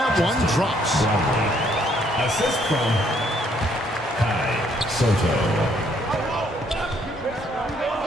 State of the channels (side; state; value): both; normal; correlation 0.68